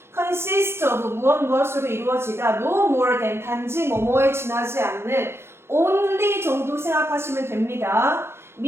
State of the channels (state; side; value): late; left; 0.12 ms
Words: consist of, 무엇으로 이루어지다, no more than, 단지 뭐뭐에 지나지 않는, only 정도 생각하시면 됩니다.